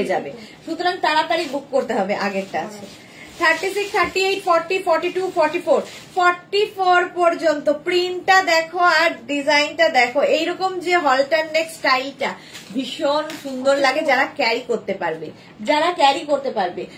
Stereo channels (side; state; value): both; identical; correlation 1.00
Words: যাবে সুতরাং তাড়াতাড়ি বুক করতে হবে আগেরটা আছে 36 38 40 42 44 44 পর্যন্ত প্রিন্টটা দেখো আর ডিজাইনটা দেখো এইরকম যে হলটার নেক স্টাইলটা ভীষণ সুন্দর লাগে যারা ক্যারি করতে পারবে